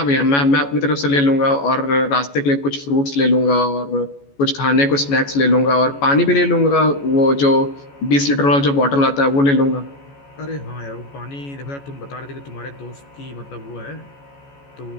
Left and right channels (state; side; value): late; right; 14 ms